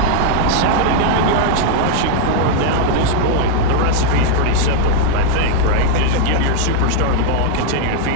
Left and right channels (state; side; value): different; both; correlation 0.00